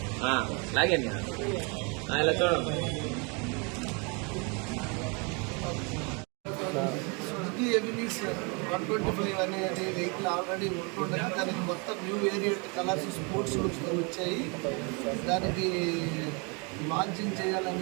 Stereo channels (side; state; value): left; quieter; 32.4 dB